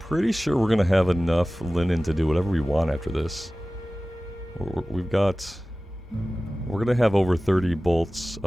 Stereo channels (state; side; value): normal; both; correlation 0.97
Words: sure we're gonna have enough linen to do whatever we want after this. We're gonna have over 30 bolts